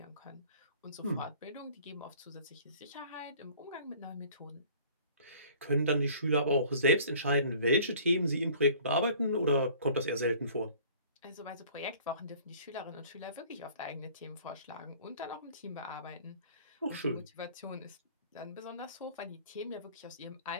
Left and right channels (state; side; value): inverted; both; correlation -0.50